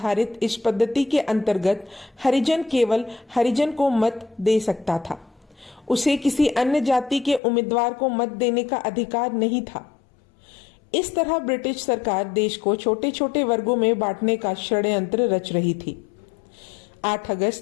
इस पद्धति के अंतर्गत हरिजन केवल हरिजन को मत दे सकता था। उसे किसी अन्य जाति के उम्मीदवार को मत देने का अधिकार नहीं था। इस तरह ब्रिटिश सरकार देश को छोटे छोटे वर्गों में बांटने का षड्यंत्र रच रही थी। 8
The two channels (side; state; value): right; drops out; at 7.4 s